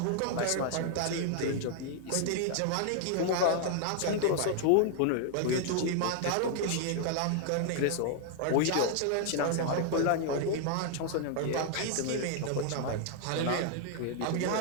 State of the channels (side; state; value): both; different; correlation 0.00